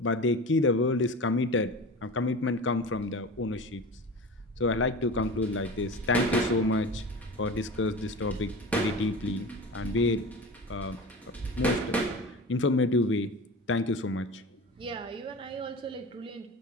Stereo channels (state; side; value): normal; both; correlation 0.32